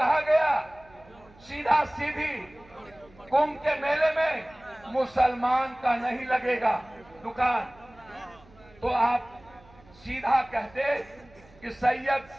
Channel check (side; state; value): right; noise; hum, 26 dB below the sound